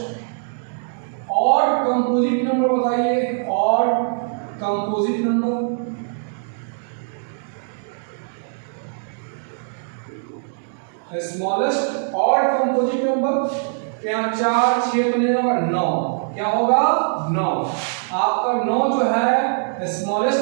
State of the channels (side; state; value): left; silent; digital silence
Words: ऑड कंपोजिट नंबर बताइए, odd composite number. Smallest odd composite number यहाँ 4, 6 तो नहीं होगा, 9। क्या होगा, 9। आपका 9 जो है